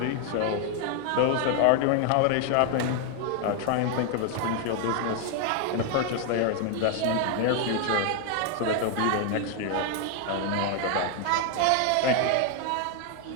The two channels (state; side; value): different; both; correlation 0.01